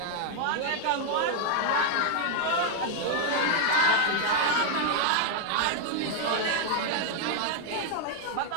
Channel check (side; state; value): both; different; correlation 0.00